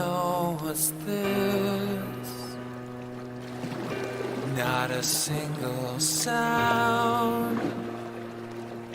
what's this? Not a single sound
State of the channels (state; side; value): identical; both; correlation 1.00